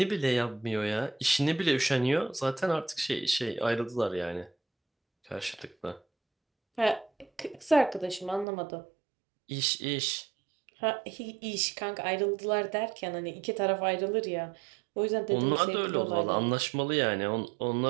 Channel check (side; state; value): left; drops out; at 8.5 s